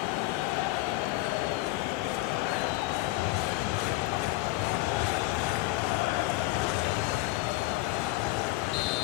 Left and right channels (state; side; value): quieter; right; 19.0 dB